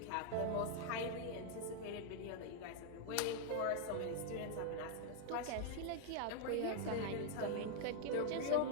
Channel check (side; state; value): both; different; correlation 0.00